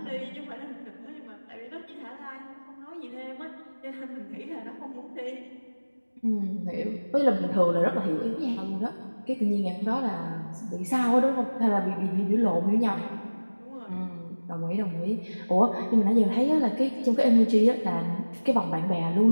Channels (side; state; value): both; inverted; correlation -1.00